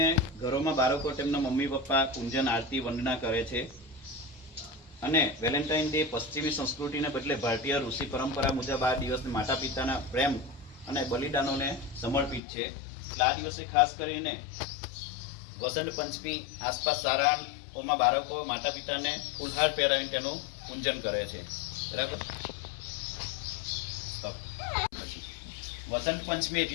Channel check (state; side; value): drops out; right; at 12.4 s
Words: ઘરોમાં બાળકો તેમના મમ્મી પપ્પા પૂજન આરતી વંદના કરે છે અને વેલેન્ટાઇન ડે પશ્ચિમી સંસ્કૃતિને બદલે ભારતીય ઋષિ પરંપરા મુજબ આ દિવસને માતા પિતાના પ્રેમ અને બલિદાનોને સમર્પિત છે। એટલે આ દિવસે ખાસ કરીને વસંત પંચમી આસપાસ શાળાઓમાં બાળકો માતા પિતાને ફૂલહાર પહેરાવીને તેનું પૂજન કરે છે, બરાબર। વસંત પંચમી